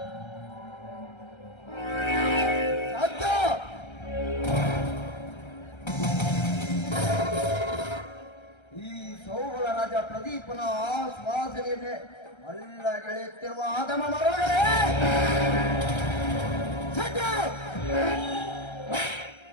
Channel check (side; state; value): right; late; 1.3 ms